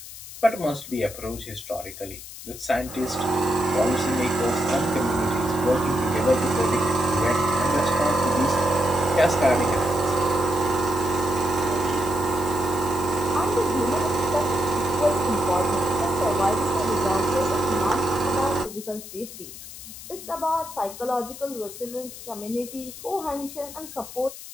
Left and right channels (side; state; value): left; noise; hiss, 13 dB below the sound